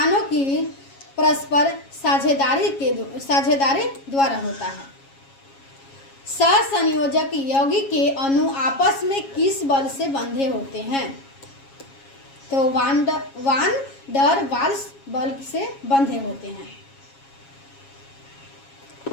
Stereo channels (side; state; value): right; late; 7.3 ms